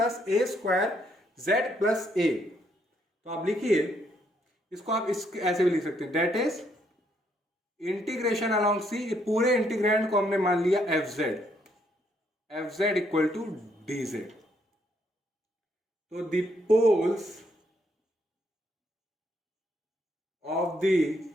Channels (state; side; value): normal; both; correlation 0.72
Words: A square Z plus ए। तो आप लिखिए इसको, आप इस ऐसे भी लिख सकते हैं, that is integration along C, पूरे इंटीग्रैंड को हमने मान लिया F Z equal to D Z. तो the poles of the